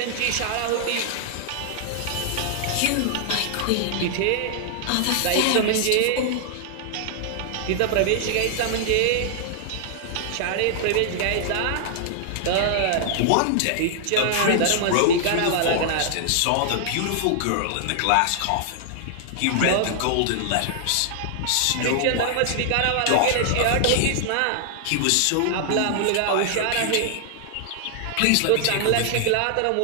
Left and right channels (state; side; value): different; both; correlation -0.01